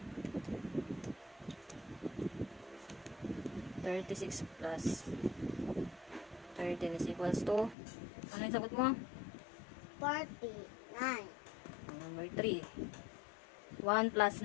36 plus 13 is equals to, ano yung sagot mo? 49. Number 3. 1 plus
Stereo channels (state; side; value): drops out; right; at 7.8 s